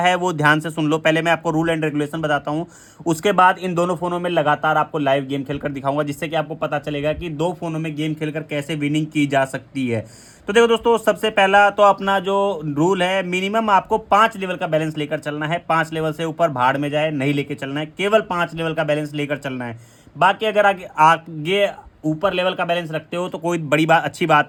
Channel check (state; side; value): identical; both; correlation 1.00